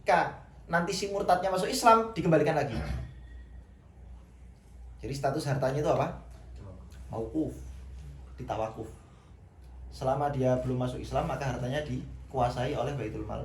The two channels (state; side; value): identical; both; correlation 1.00